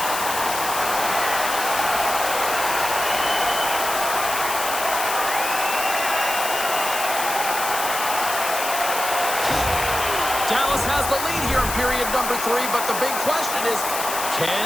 Dallas has the lead here in period number 3, but the big question is, can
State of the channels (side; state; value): left; noise; hiss, 5 dB below the sound